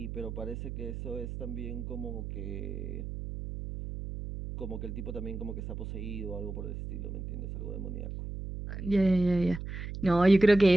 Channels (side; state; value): right; noise; hum, 7 dB below the sound